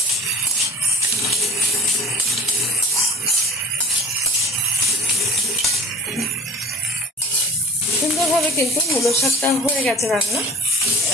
সুন্দরভাবে কিন্তু মূলো শাকটা হয়ে গেছে রান্না।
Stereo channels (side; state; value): both; normal; correlation 0.39